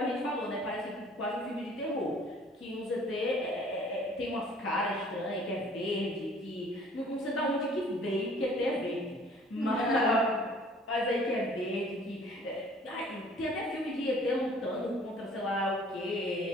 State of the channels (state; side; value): normal; both; correlation 0.54